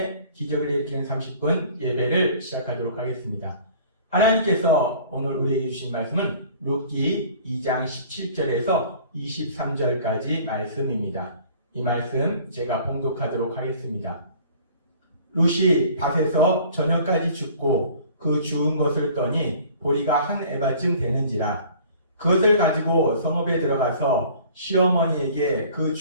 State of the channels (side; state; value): both; inverted; correlation -0.50